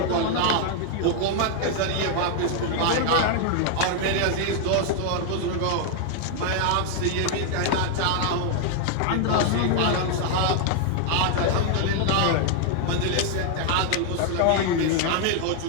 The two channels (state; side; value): different; both; correlation 0.00